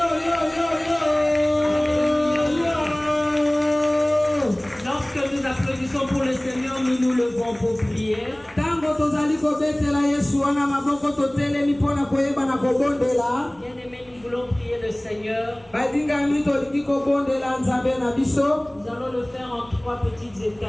yo yo yo yo. Lorsque nous applaudissons pour le Seigneur, nous nous levons pour prier. Tango tozali kobetela yesu wana maboko totelemi mpona koyeba na kobondela. Bien-aimés, nous voulons prier le Seigneur. Badingami tolingi kobondela nzambe na biso. Nous allons le faire en 3 petites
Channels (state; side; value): noise; right; hum, 29 dB below the sound